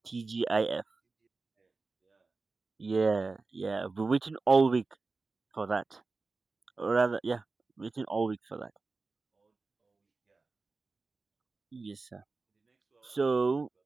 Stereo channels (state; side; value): quieter; left; 3.9 dB